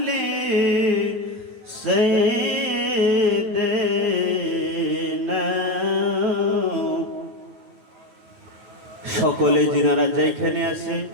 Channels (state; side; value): late; left; 9.1 ms